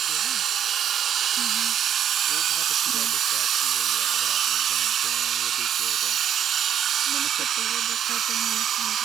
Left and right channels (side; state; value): left; quieter; 9.4 dB